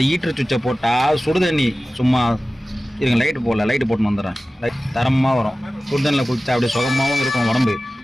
ஈட்டர் சுவிட்சை போட்டால் சுடுதண்ணி சும்மா இருங்க லைட்டு போட்டுன்னு வந்துடுறேன். தரமாக வரும். சுடுதண்ணில் குளிச்சா அப்படியே சுகமாகவும் இருக்கும் உடம்பு.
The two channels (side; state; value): both; normal; correlation 0.96